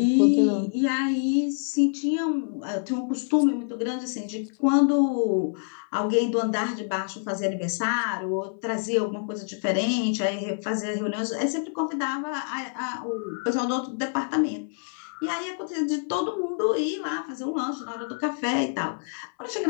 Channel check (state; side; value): silent; right; 61 dB below the other